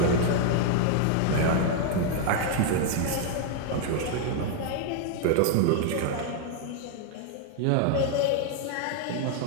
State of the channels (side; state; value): both; different; correlation 0.00